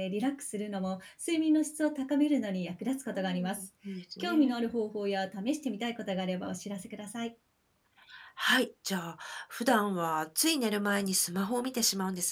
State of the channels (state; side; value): identical; both; correlation 1.00